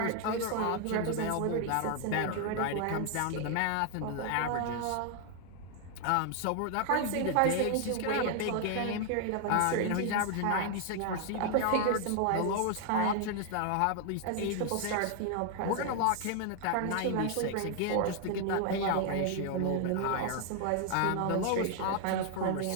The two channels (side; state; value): both; different; correlation 0.00